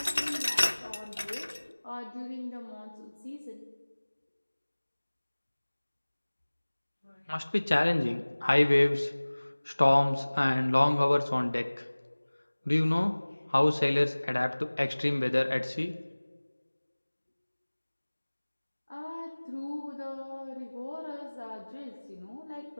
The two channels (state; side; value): inverted; both; correlation -1.00